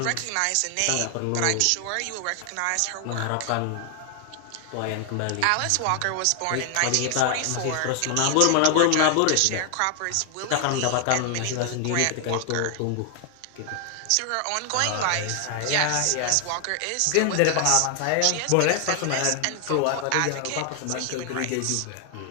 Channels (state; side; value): different; both; correlation 0.00